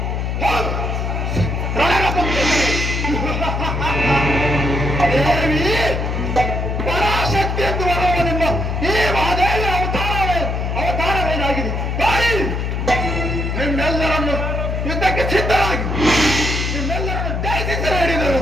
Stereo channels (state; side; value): noise; left; hum, 1 dB below the sound